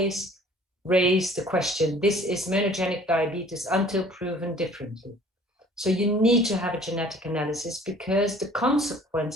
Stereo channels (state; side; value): normal; both; correlation 0.52